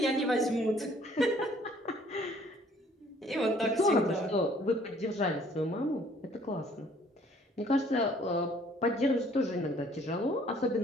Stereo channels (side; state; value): both; normal; correlation 0.59